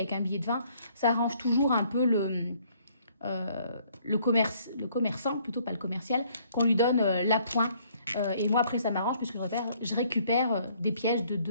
un billet de 20, ça arrange toujours un peu le commerçant, plutôt pas le commercial, qu'on lui donne l'appoint. Et moi, après, ça m'arrange puisque je récupère des pièces de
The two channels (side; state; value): both; inverted; correlation -0.63